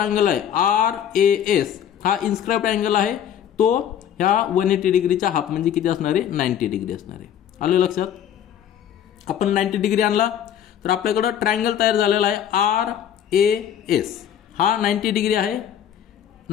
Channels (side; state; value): right; quieter; 9.7 dB